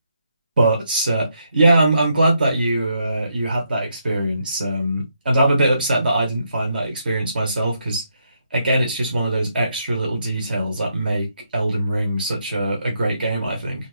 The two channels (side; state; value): both; inverted; correlation -0.78